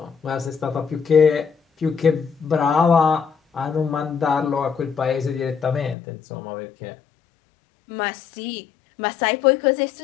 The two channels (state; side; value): drops out; right; at 6.0 s